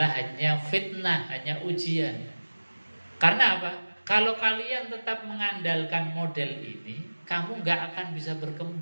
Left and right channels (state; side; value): inverted; both; correlation -1.00